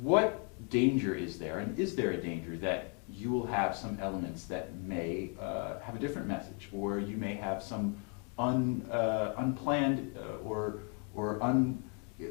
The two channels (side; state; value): right; quieter; 35.8 dB